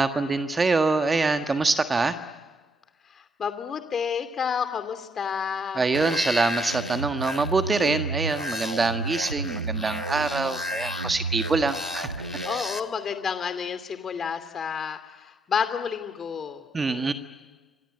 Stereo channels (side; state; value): both; normal; correlation 0.72